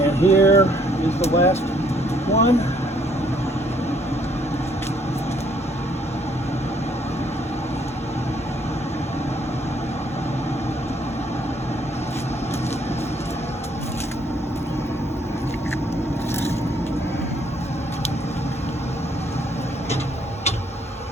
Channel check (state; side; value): normal; both; correlation 0.66